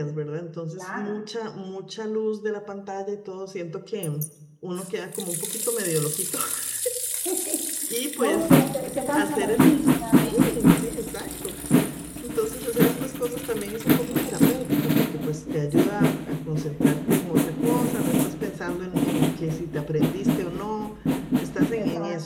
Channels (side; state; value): both; identical; correlation 1.00